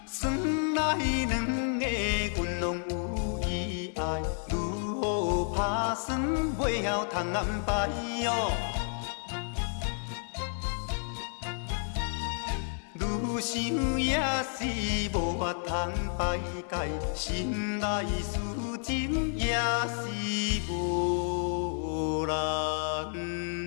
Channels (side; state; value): right; silent; 57 dB below the other